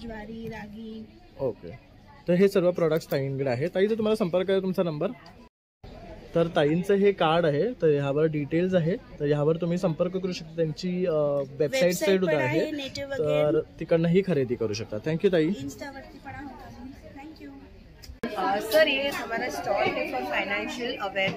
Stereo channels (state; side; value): identical; both; correlation 1.00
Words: ज्वारी, रागी. ओके. तर हे सर्व प्रोडक्ट्स ताईंकडे आहे. ताई, जर तुम्हाला संपर्क आहे तुमचा नंबर, तर ताईंचं हे कार्ड आहे, तर ह्यावर डिटेल्स आहे. तर ह्यावर तुम्ही संपर्क करू शकता. त्यांची वेबसाईट सुद्धा आहे, तर तिकडनंही खरेदी करू शकता. थँक्यू ताई. इन्स्टावरती पण आहोत. थँक्यू. सर ये हमारा स्टॉल है for financial